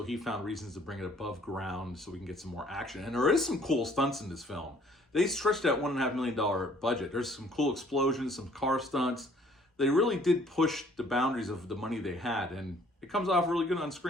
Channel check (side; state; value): both; normal; correlation 0.59